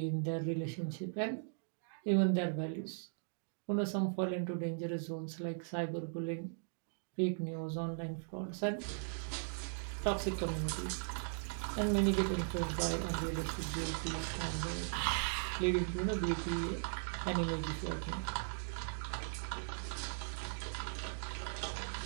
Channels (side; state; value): left; silent; digital silence